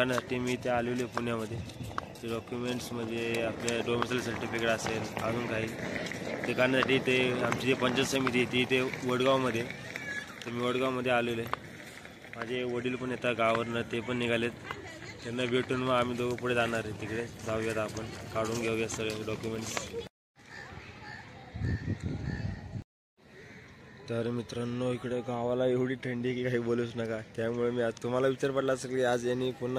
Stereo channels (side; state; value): both; identical; correlation 1.00